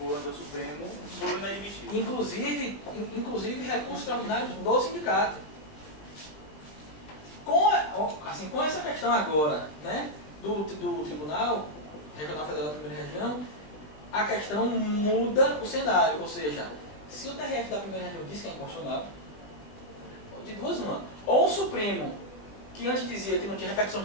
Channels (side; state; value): right; late; 20 ms